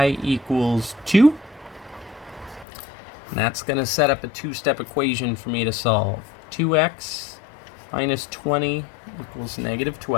equals 2. And that's going to set up a two-step equation for me to solve. 2x minus 20 equals negative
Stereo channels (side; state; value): right; drops out; at 2.7 s